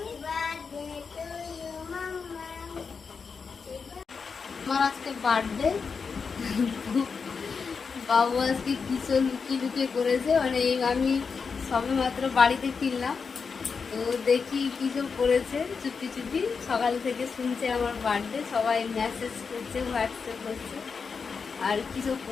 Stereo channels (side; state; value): right; quieter; 5.4 dB